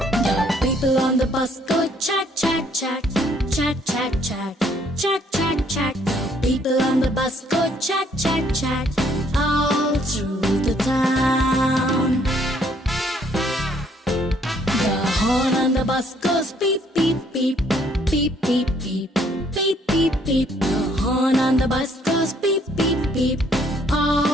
The people on the bus go chat, chat, chat, chat, chat, chat, chat, chat, chat. The people on the bus go chat, chat, chat, all through the town. The horn on the bus goes beep, beep, beep, beep, beep, beep, beep, beep, beep. The horn on the bus goes beep, beep, beep,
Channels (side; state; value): both; normal; correlation 0.65